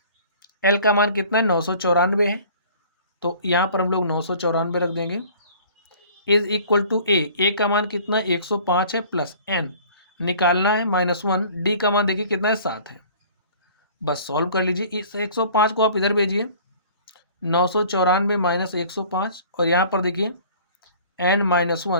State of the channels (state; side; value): inverted; both; correlation -0.49